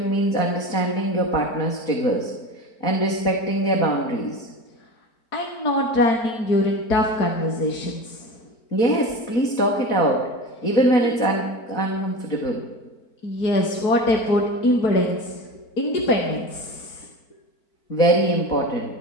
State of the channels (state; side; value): late; right; 4.4 ms